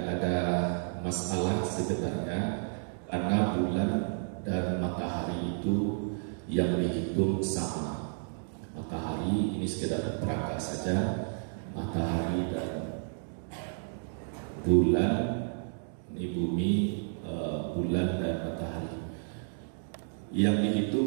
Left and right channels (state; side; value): silent; left; digital silence